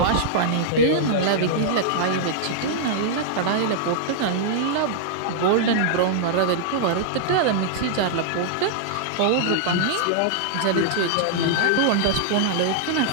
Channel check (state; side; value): different; both; correlation -0.01